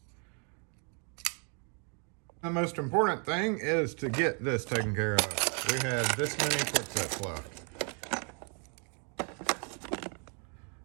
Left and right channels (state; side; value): quieter; left; 38.9 dB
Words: The most important thing is to get this taken care of. We had this many quick sets left.